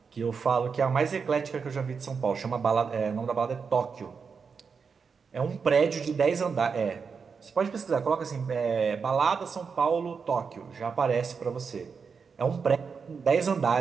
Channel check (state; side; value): quieter; left; 5.7 dB